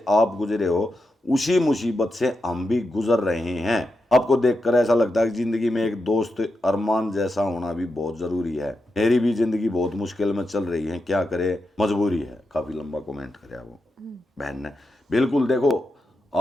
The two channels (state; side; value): normal; both; correlation 0.87